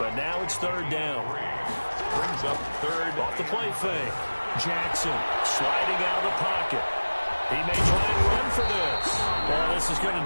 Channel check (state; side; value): inverted; both; correlation -1.00